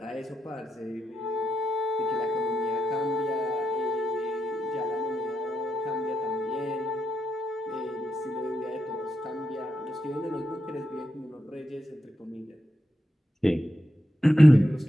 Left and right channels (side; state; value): both; normal; correlation 0.85